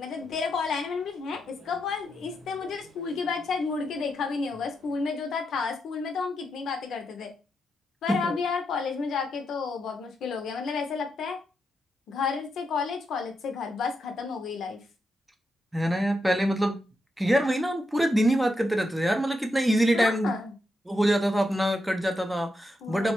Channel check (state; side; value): normal; both; correlation 0.84